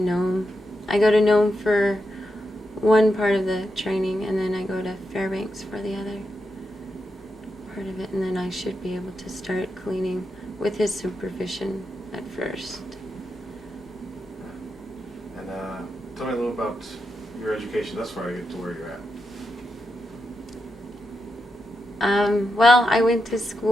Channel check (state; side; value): normal; both; correlation 0.86